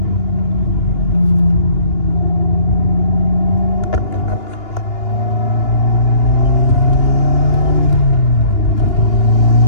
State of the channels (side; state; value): right; late; 2.9 ms